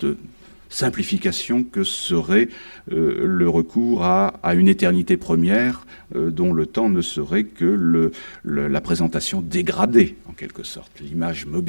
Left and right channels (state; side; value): inverted; both; correlation -1.00